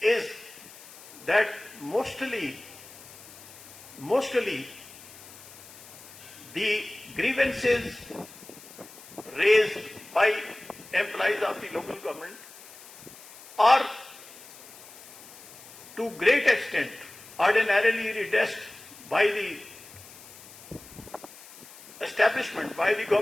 is that mostly the grievances raised by employees of the local government are to great extent ordinarily redressed by the establishment, by the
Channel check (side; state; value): left; noise; hiss, 18 dB below the sound